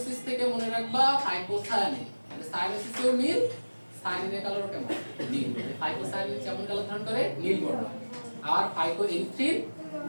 থেকে মনে রাখবা হাইপোসায়ানিন, মানে সায়ানোসিসেও নীল, সায়ানিনের কালারও কেমন নীল, মানে হাইপোসায়ানিন যেমন কালার ধারণ করে নীল বর্ণ, আর হাইপোএরিথ্রিন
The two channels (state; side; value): inverted; both; correlation -1.00